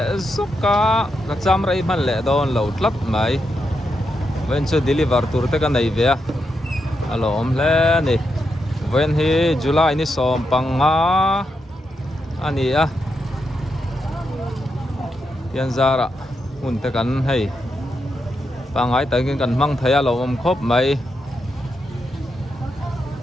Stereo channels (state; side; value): normal; both; correlation 0.84